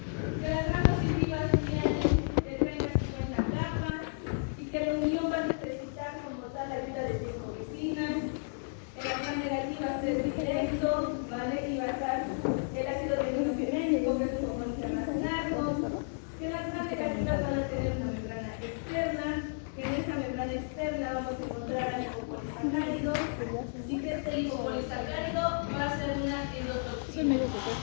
que las gram positivas tienen de 30 a 50 capas y que la unión va a necesitar como tal la ayuda de 5 vecinas. En las gram negativas es directo, ¿vale? Y va a estar el ácido ribonucleico, que es un compuesto internacional, que las gram negativas van a tener una membrana externa, que en esta membrana externa vamos a encontrar lipopolisacáridos y que este lipopolisacárido va a ser una endotoxina.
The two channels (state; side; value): silent; right; digital silence